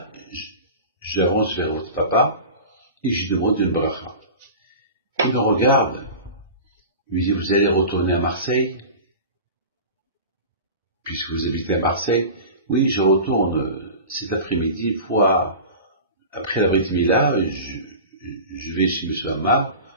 j'avance vers votre papa, et je demande une bracha. Il me regarde, il me dit, vous allez retourner à Marseille, puisque vous habitez à Marseille? Oui, je retourne cet après-midi, une fois après la Brit Mila, je vais chez M. Amar,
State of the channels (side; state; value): both; inverted; correlation -0.34